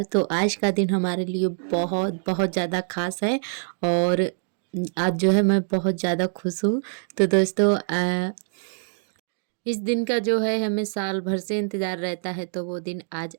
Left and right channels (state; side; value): silent; left; digital silence